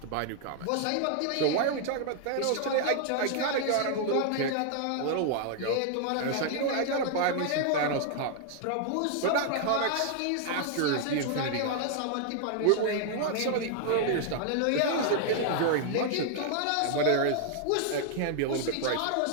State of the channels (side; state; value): both; different; correlation 0.00